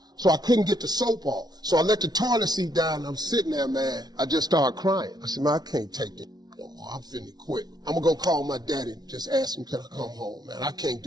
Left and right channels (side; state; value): left; late; 0.19 ms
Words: So I couldn't get the soap off. So I let the toilet seat down, and I'm sitting there, man. I just started crying. I said, man, I can't take this no more. I'm finna quit. I'm gonna go call my daddy and just ask him, can I come home, man? I can't